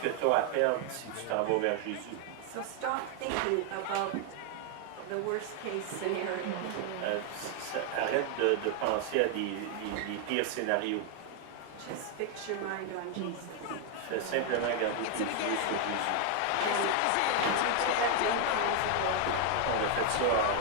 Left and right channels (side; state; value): both; different; correlation 0.00